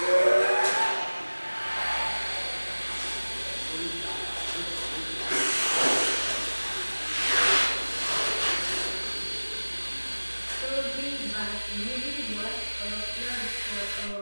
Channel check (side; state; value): both; inverted; correlation -1.00